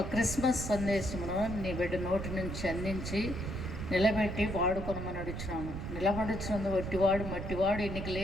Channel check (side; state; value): right; noise; rumble, 6 dB below the sound